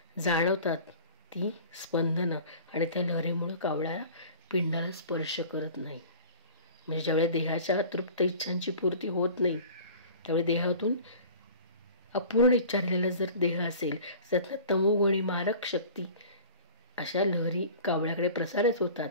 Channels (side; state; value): both; inverted; correlation -0.43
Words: जाणवतात ती स्पंदनं आणि त्या लहरीमुळं कावळ्याला पिंडाला स्पर्श करत नाही. म्हणजे ज्यावेळी देहाच्या अतृप्त इच्छांची पूर्ती होत नाही त्यावेळी देहातून अपूर्ण इच्छा राहिलेला जर देह असेल त्यातनं तमोगुणी मारक शक्ती अशा लहरी कावळ्याकडे प्रसारित होतात